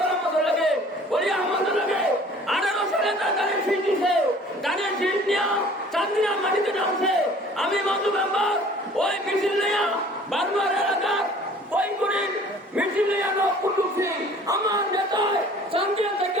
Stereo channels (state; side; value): normal; both; correlation 0.50